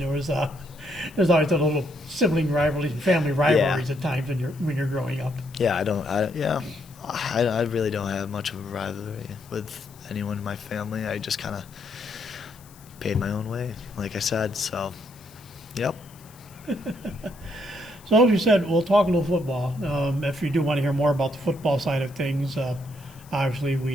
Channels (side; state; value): left; noise; hiss, 24 dB below the sound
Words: always a little sibling rivalries and family rivalries at times when you're growing up. Yeah, I really don't have much of a rivalry with anyone in my family. I just kind of paid my own way, like I said. So, yep. So as you said, we'll talk a little football. If you do want to hear more about the football side of things, obviously